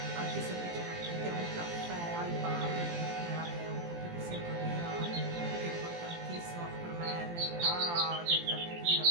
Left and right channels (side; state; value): left; late; 17 ms